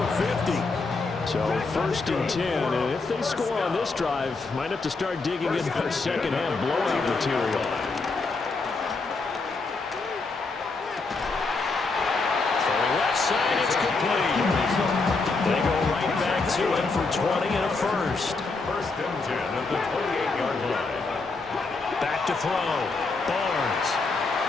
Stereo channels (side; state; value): right; quieter; 3.9 dB